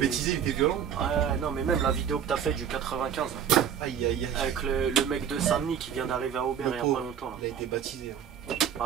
il était violent. Ouais, non, mais même la vidéo que t'as faite du 95 là, Aïe, aïe, aïe. avec le mec de Saint-Denis qui vient d'arriver à Aubert il y a pauvre. pas longtemps. Là. Il a été baptisé. Hein.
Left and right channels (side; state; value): left; quieter; 8.5 dB